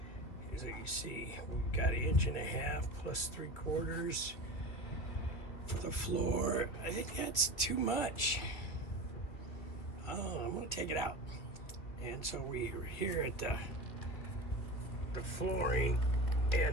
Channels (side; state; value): right; late; 2.7 ms